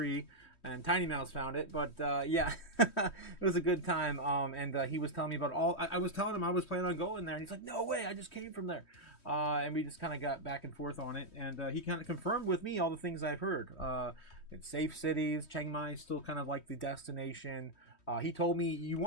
And Tiny Mouse found it. But yeah, it was a good time. And he was telling me about I was telling him I was planning on going there. And he's like, no way, I just came from there. And we just kind of got back and forth on it. And he kind of confirmed with me all the things I've heard. It's safe cities. Chiang Mai is still kind of like the destination. He told me, you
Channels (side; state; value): right; late; 3.1 ms